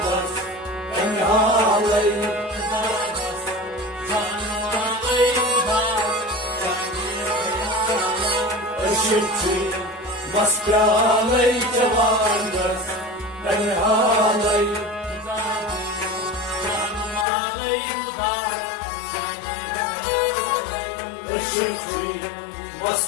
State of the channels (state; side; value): drops out; right; at 17.2 s